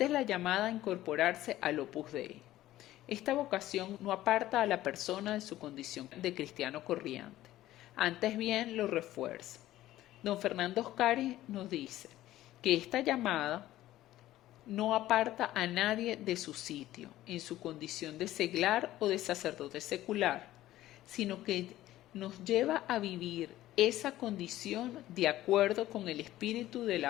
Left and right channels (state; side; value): quieter; right; 14.7 dB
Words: es la llamada a incorporarse al Opus Dei. Esta vocación no aparta a la persona de su condición de cristiano corriente. Antes bien lo refuerza. Don Fernando Oscari nos dice que esta llamada no aparta a nadie de su sitio, en su condición de seglar o de sacerdote secular, sino que nos lleva a vivir esa condición de acuerdo con el espíritu de